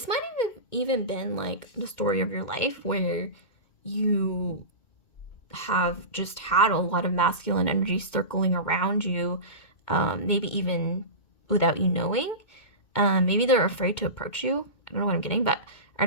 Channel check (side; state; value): right; late; 2.2 ms